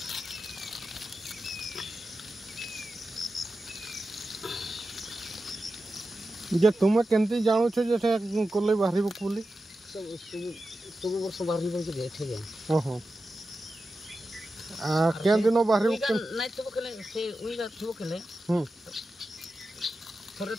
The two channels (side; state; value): both; normal; correlation 0.92